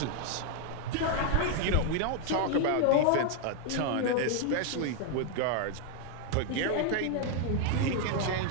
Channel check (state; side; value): different; both; correlation 0.00